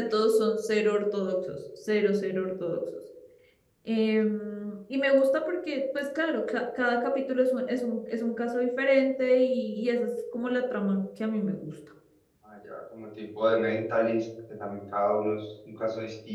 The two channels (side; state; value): both; identical; correlation 1.00